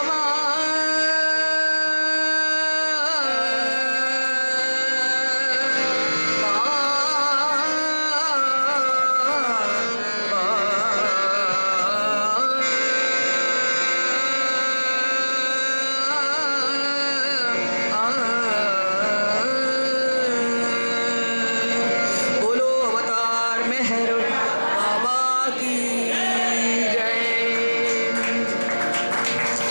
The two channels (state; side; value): inverted; both; correlation -1.00